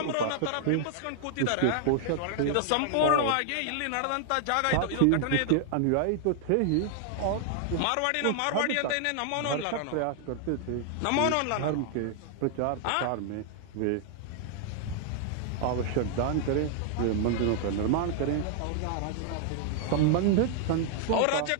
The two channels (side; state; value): both; different; correlation 0.00